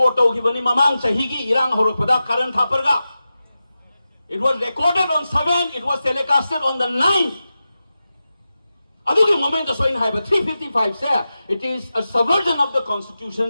ki bani mamang sahigi irang horok pada karan thaparga. It was recorded on 7, it was telecasted on the 9th. Adugi moment so in haiba 355 say it is a subversion of the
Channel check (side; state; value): both; inverted; correlation -0.93